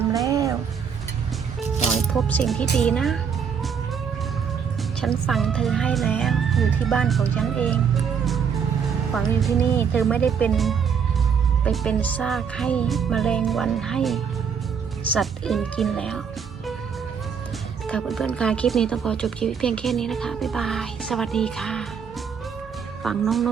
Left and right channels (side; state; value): left; quieter; 6.9 dB